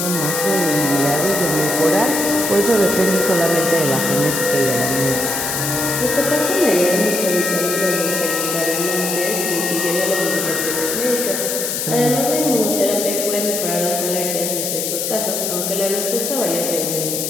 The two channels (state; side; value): noise; left; hiss, 2 dB below the sound